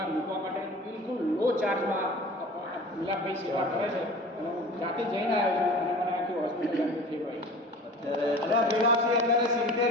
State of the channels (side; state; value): both; normal; correlation 0.40